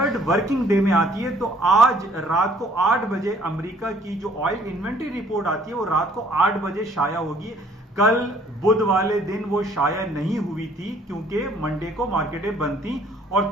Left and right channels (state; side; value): normal; both; correlation 0.59